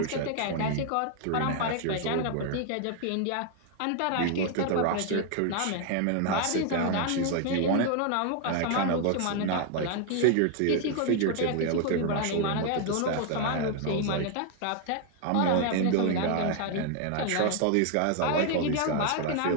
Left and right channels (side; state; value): both; different; correlation 0.00